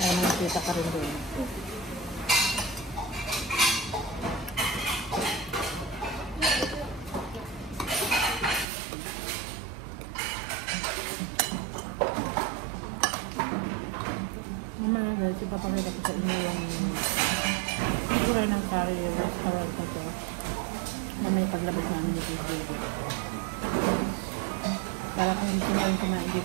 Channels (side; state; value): left; drops out; at 8.7 s